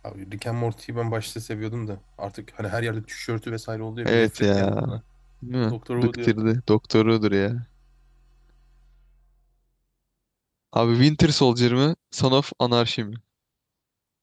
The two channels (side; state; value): both; identical; correlation 1.00